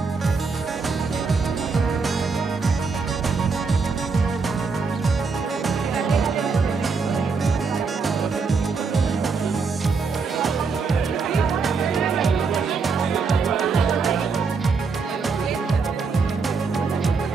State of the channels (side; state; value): left; quieter; 4.8 dB